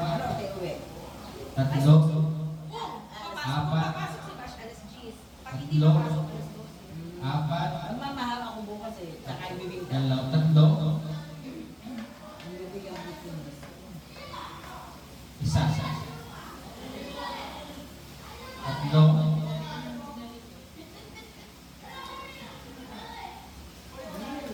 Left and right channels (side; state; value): both; identical; correlation 1.00